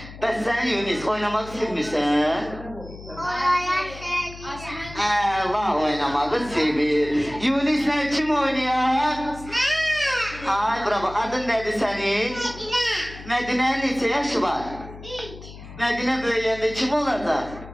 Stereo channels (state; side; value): noise; left; hum, 15 dB below the sound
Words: Bəs sən Yunis, oynamaq sevmirsən? Allah oynamağı sevir. Yunis'le kim oynuyor? Ay bravo. Adın nedir senin? Medine'nin neçə yaşı var? Medine böyüyəndə kim olacaq?